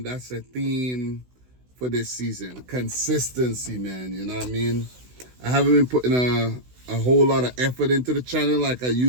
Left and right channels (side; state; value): left; late; 16 ms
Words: that's a theme for this season. Consistency, man. You know what I mean? I haven't been putting a whole lot of effort into the channel like I